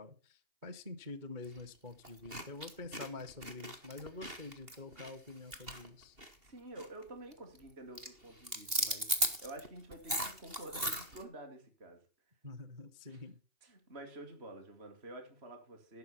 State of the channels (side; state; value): left; late; 2.8 ms